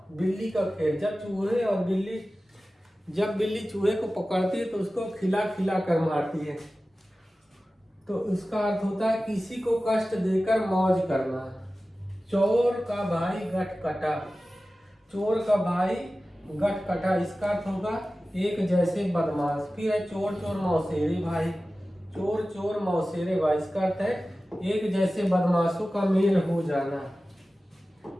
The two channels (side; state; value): both; normal; correlation 0.96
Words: बिल्ली का खेल। जब बिल्ली चूहे को पकड़ती है तो उसको खिला खिला कर मारती है, तो उसका अर्थ होता है किसी को कष्ट देकर मौज करना। चोर का भाई गट कटा। चोर का भाई गट कटा, इसका अर्थ होगा एक जैसे बदमाश। फिर है चोर चोर मौसेरे भाई। चोर चोर मौसेरे भाई, इसका अर्थ है एक जैसे बदमाशों का मेल हो जाना।